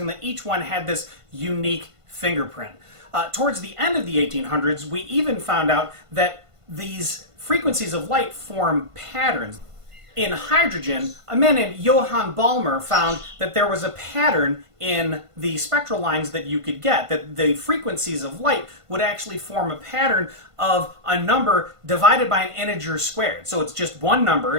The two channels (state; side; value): late; left; 1.5 ms